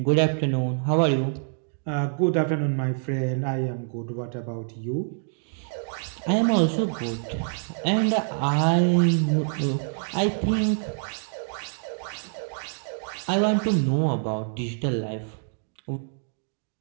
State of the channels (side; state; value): left; silent; digital silence